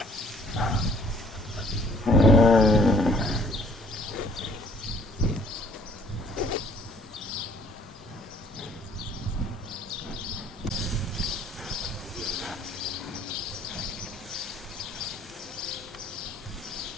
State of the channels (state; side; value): normal; both; correlation 0.59